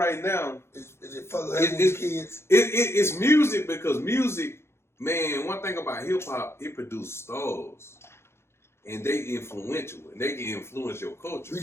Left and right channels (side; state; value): right; late; 0.12 ms